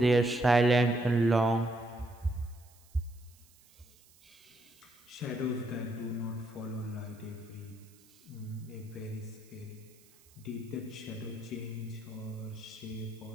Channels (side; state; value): right; noise; hiss, 27 dB below the sound